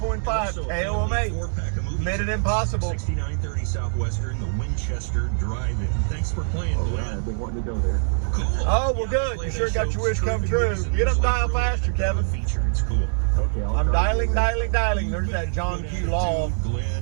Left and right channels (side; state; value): left; silent; 63 dB below the other